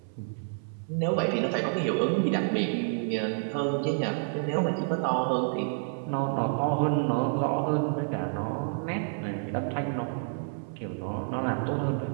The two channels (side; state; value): left; silent; 59 dB below the other